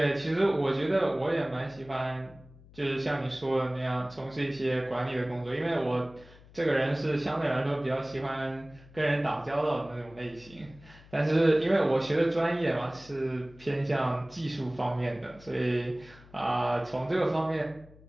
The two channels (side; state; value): left; noise; hum, 23 dB below the sound